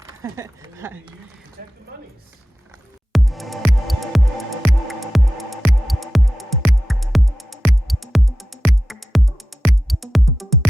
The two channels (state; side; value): normal; both; correlation 0.92